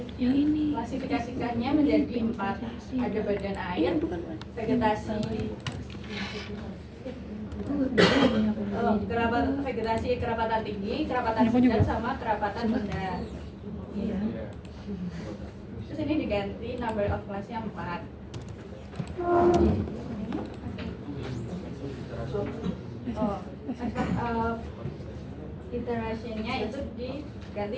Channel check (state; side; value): identical; both; correlation 1.00